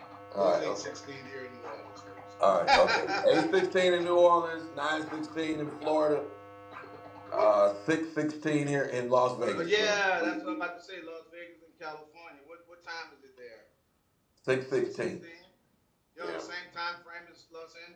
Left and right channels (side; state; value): both; identical; correlation 1.00